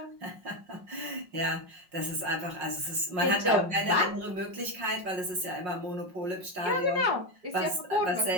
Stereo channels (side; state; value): left; late; 5.5 ms